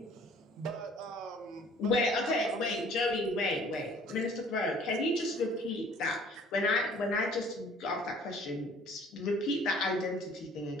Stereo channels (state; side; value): normal; both; correlation 0.54